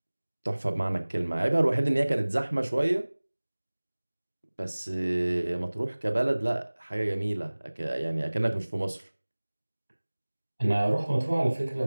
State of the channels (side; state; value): both; inverted; correlation -1.00